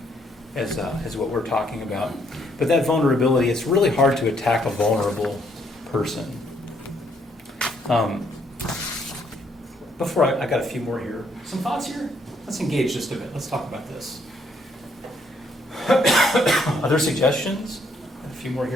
as what we're talking about. But that vulnerability, it's really hard to attack a vulnerable person. Before I got a few more here. Some thoughts here? Let's engage just a bit. Let's talk about this. Other suggestions? A few more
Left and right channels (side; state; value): both; normal; correlation 0.70